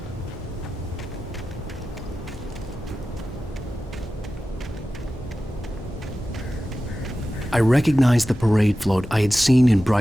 I recognized the parade float I had seen in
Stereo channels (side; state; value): both; normal; correlation 0.94